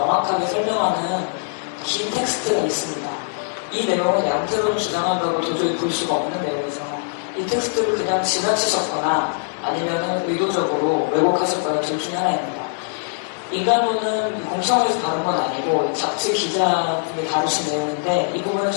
설명하는 긴 텍스트가 있습니다. 이 내용은 양태론 주장한다고 도저히 볼 수가 없는 내용이죠. 이 텍스트를 그냥 지나치셨거나 아니면 의도적으로 왜곡하셨거나 둘 중에 하나입니다. 인간론은 공청회에서 다룬 건 아니고 잡지 기자분이 다루신 내용인데 이 부분은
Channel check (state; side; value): silent; right; digital silence